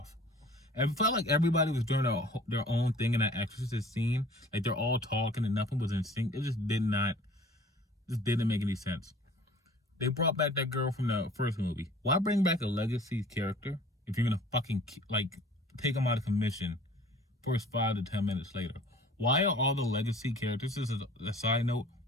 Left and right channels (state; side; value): normal; both; correlation 0.49